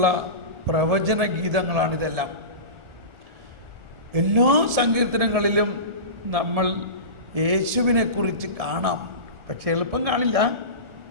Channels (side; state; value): left; late; 1.7 ms